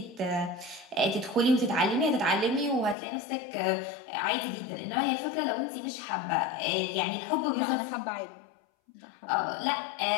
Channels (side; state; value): right; drops out; at 3.0 s